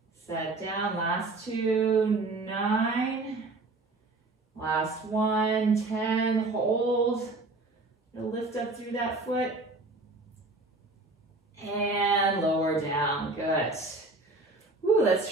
set down, last 2, 9, last 1, 10, hold, lift up through that foot, and lower down, good. Ooh, let's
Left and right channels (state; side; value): quieter; left; 3.2 dB